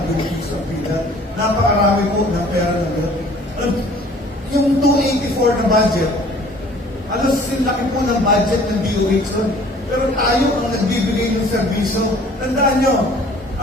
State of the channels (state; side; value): normal; both; correlation 0.52